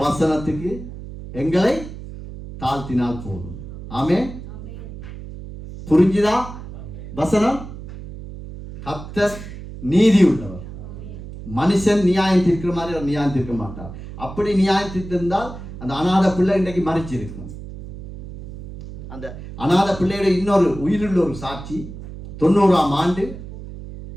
வசனத்துக்கு எங்களை தாழ்த்தினால் போதும். ஆமென். புரிஞ்சுதா? வசனம், கர்த்தர் நீதி உள்ளவர். மனுஷன் நியாயம் தீர்க்கிற மாதிரி அவர் நியாயம் தீர்க்க மாட்டார். அப்படி நியாயம் தீர்த்திருந்தால் அந்த அநாத பிள்ளை இன்றைக்கு மறிச்சு இருக்கும். அந்த அநாத பிள்ளையோட இன்னொரு உயிருள்ள ஒரு சாட்சி, 90ஆம் ஆண்டு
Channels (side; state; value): right; noise; hum, 12 dB below the sound